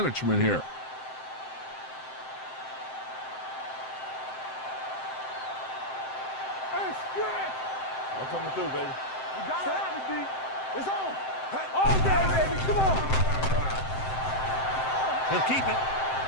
here. Hey, stretch. I'm coming through, baby. You got to have it, D. It's on. All day, baby. Come on. He'll keep it.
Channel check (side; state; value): right; late; 7.7 ms